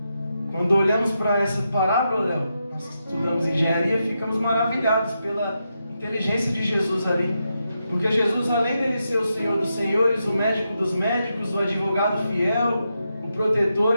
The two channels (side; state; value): both; inverted; correlation -0.85